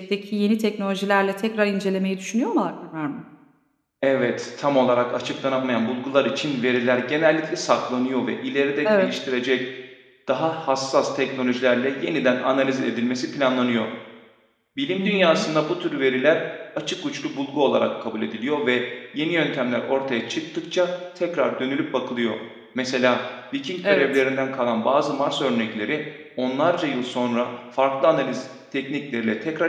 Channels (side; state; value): both; identical; correlation 1.00